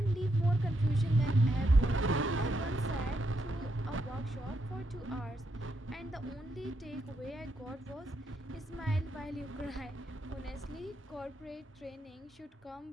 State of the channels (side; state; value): both; normal; correlation 0.80